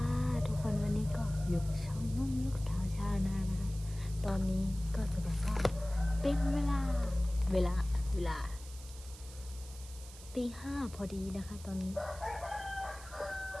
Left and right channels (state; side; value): noise; right; hiss, 17 dB below the sound